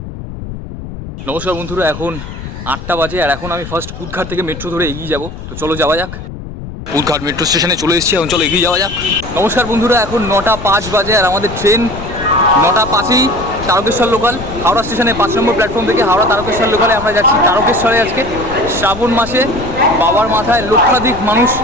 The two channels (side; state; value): left; noise; rumble, 11 dB below the sound